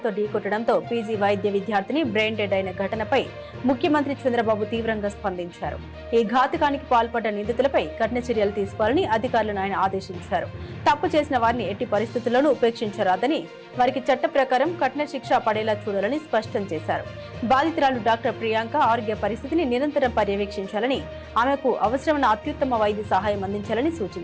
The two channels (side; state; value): both; identical; correlation 1.00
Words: ఢీకొట్టడంతో పీజీ వైద్య విద్యార్థిని బ్రెయిన్ డెడ్ అయిన ఘటనపై ముఖ్యమంత్రి చంద్రబాబు తీవ్రంగా స్పందించారు. ఈ ఘాతుకానికి పాల్పడ్డ నిందితులపై కఠిన చర్యలు తీసుకోవాలని అధికారులను ఆయన ఆదేశించారు. తప్పు చేసిన వారిని ఎట్టి పరిస్థితుల్లోనూ ఉపేక్షించరాదని, వారికి చట్ట ప్రకారం కఠిన శిక్ష పడేలా చూడాలని స్పష్టం చేశారు. బాధితురాలు డాక్టర్ ప్రియాంక ఆరోగ్య పరిస్థితిని నిరంతరం పర్యవేక్షించాలని, ఆమెకు అవసరమైన అత్యుత్తమ వైద్య సహాయం అందించాలని